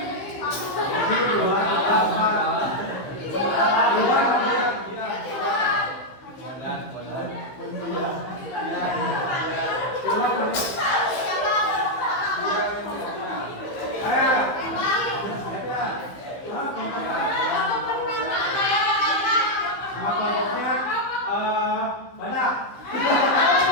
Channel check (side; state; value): right; late; 15 ms